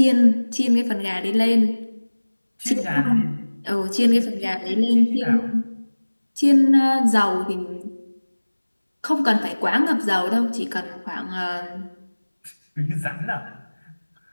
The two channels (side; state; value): both; inverted; correlation -1.00